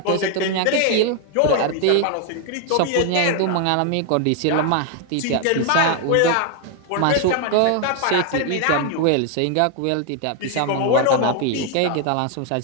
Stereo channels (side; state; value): both; different; correlation 0.00